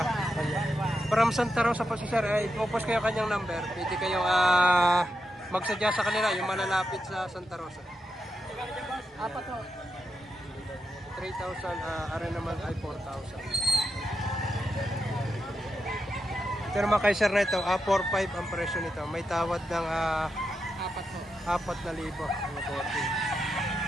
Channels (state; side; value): normal; both; correlation 0.86